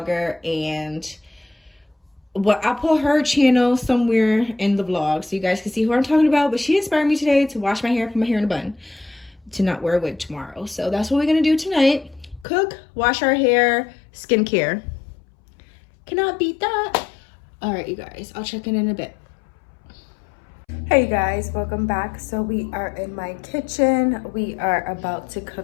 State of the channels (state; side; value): drops out; right; at 12.5 s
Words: and I'll put her channel somewhere in the vlog so you guys can see who I'm talking about. But she inspired me today to wash my hair, put my hair in a bun, to not wear a wig tomorrow. So that's what we're gonna do tonight. Cook, wash our hair, skincare. Cannot beat that. All right, you guys, I'll check in a bit. Hey, you guys, welcome back. So we are in my kitchen. We are about to